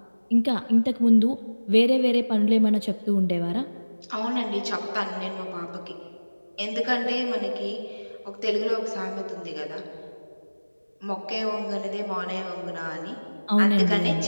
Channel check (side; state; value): both; inverted; correlation -1.00